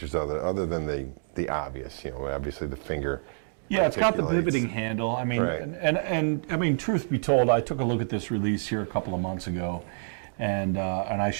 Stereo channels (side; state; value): left; silent; digital silence